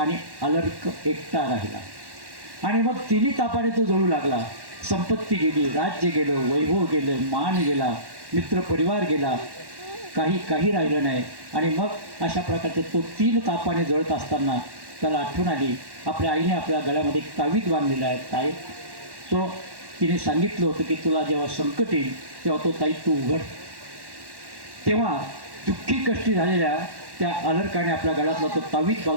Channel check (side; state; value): left; late; 1.1 ms